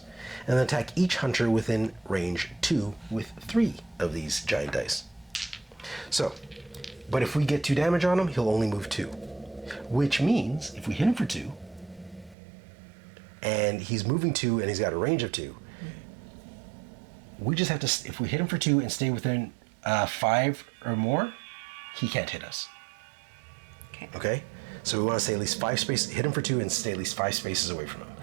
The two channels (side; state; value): left; drops out; at 12.4 s